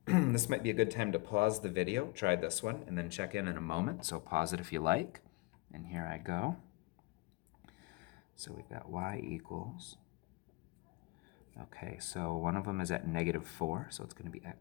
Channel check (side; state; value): right; quieter; 24.2 dB